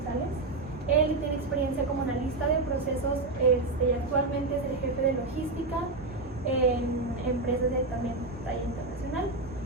Él tiene experiencia como analista de procesos y actualmente es el jefe de logística en empresas de también talla internacional.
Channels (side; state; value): left; quieter; 3.3 dB